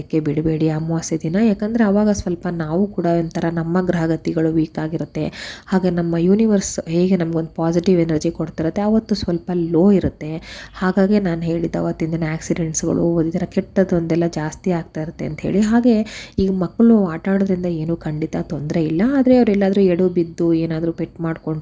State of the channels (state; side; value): identical; both; correlation 1.00